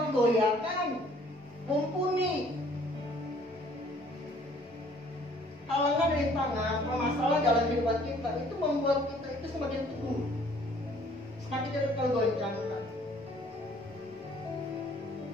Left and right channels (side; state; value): both; normal; correlation 0.58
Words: mumpuni. Halangan rintangan, permasalahan dalam kehidupan kita itu membuat kita itu semakin teguh, semakin tidak tergoyahkan.